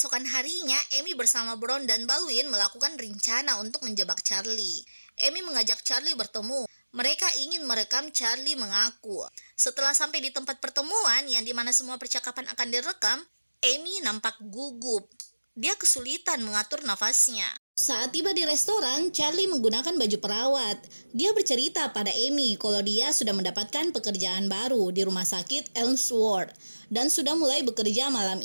harinya, Amy bersama Bron dan Baldwin melakukan rencana untuk menjebak Charlie. Amy mengajak Charlie bertemu. Mereka ingin merekam Charlie mengaku. Setelah sampai di tempat pertemuan yang dimana semua percakapan akan direkam, Amy nampak gugup. Dia kesulitan mengatur nafasnya. Saat tiba di restoran, Charlie menggunakan baju perawat. Dia bercerita pada Amy kalau dia sudah mendapatkan pekerjaan baru di rumah sakit Elmsworth dan sudah mulai bekerja malam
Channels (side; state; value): both; inverted; correlation -1.00